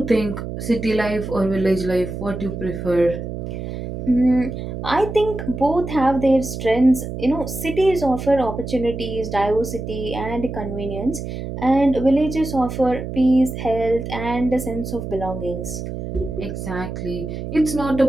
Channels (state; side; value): noise; right; hum, 7 dB below the sound